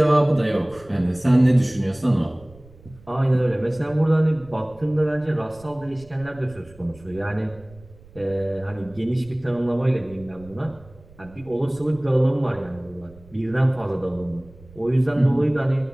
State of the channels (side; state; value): right; noise; rumble, 23 dB below the sound